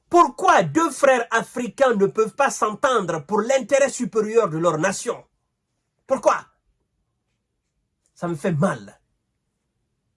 Pourquoi deux frères africains ne peuvent pas s'entendre pour l'intérêt supérieur de leur nation? Pourquoi? Ça me fait mal.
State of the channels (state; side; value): identical; both; correlation 1.00